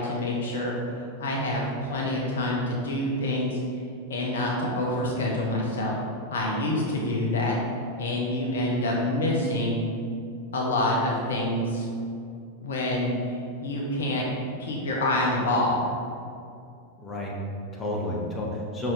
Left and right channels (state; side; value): normal; both; correlation 0.00